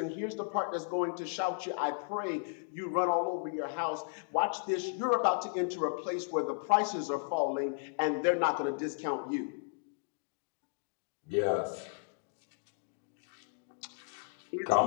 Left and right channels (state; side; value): silent; right; digital silence